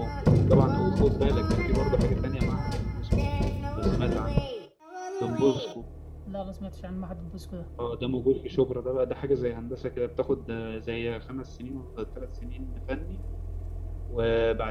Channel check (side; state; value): both; identical; correlation 1.00